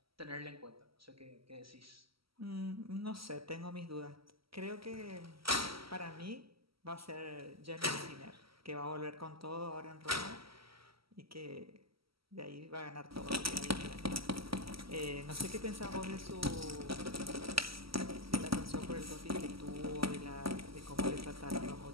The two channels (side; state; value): left; late; 0.75 ms